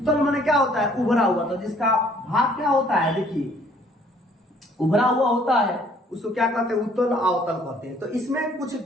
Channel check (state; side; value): normal; both; correlation 0.60